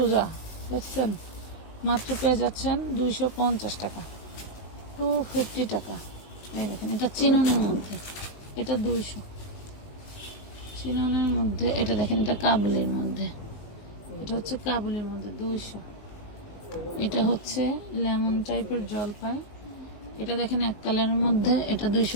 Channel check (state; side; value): late; right; 19 ms